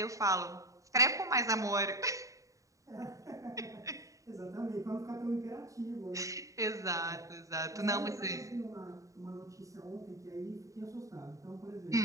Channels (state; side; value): late; left; 0.16 ms